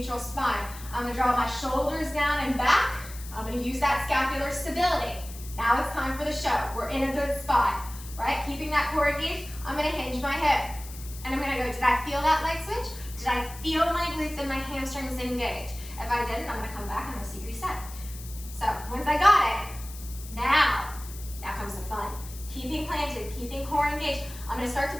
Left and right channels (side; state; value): left; noise; hiss, 15 dB below the sound